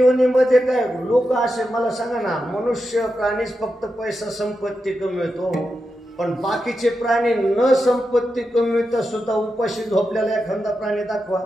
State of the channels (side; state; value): both; normal; correlation 0.88